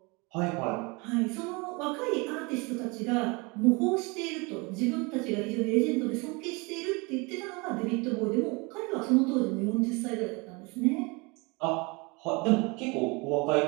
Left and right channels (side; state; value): left; quieter; 27.9 dB